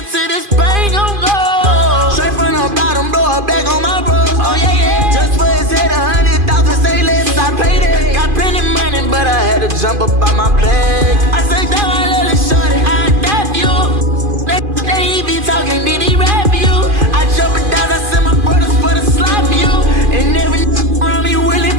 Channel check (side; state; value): left; late; 2.5 ms